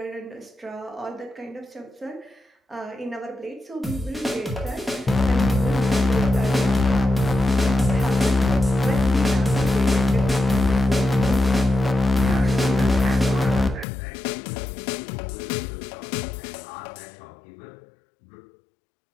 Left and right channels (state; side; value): drops out; right; at 13.9 s